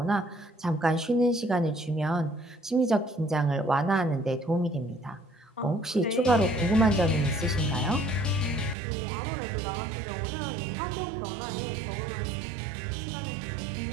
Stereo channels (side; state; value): left; drops out; at 8.8 s